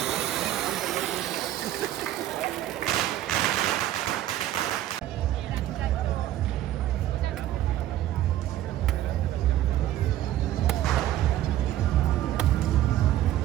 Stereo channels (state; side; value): quieter; left; 13.1 dB